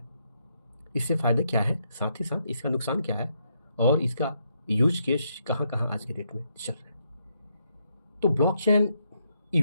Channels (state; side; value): inverted; both; correlation -0.78